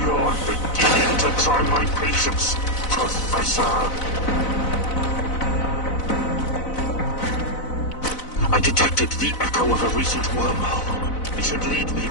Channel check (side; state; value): right; late; 4.0 ms